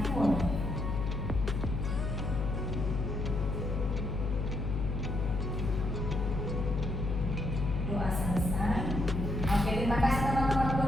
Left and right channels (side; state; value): left; noise; hum, 1 dB below the sound